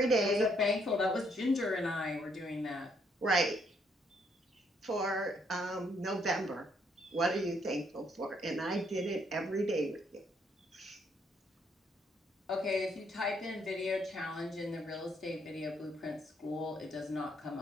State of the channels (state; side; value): normal; both; correlation 0.71